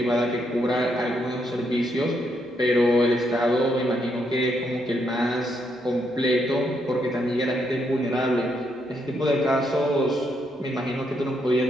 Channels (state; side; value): normal; both; correlation 0.77